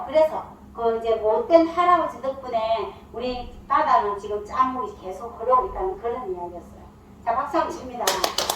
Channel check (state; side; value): identical; both; correlation 1.00